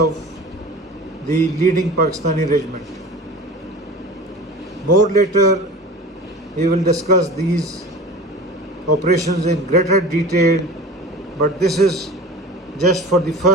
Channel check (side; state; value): both; normal; correlation 0.37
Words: the leading Pakistani regiment. More later we will discuss these operations in greater detail, but this is just for the